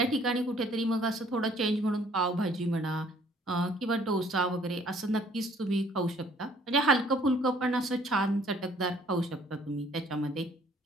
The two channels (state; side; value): normal; both; correlation 0.59